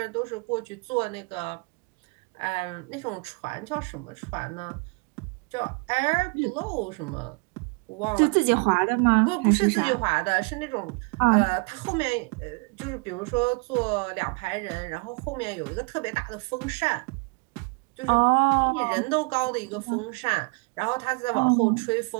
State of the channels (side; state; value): left; quieter; 32.1 dB